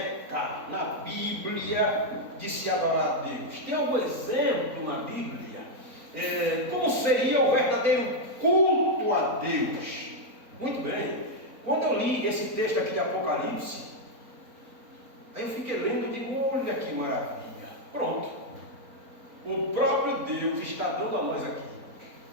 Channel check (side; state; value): left; late; 4.1 ms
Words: na Bíblia de se adorar a Deus? Tem algum exemplo na Bíblia? Como seria o verdadeiro culto a Deus? Muito bem, quando eu li esse texto aqui de Apocalipse, aí eu fiquei lendo e digo, olha que maravilha, pronto, o próprio Deus está dando a nós aqui,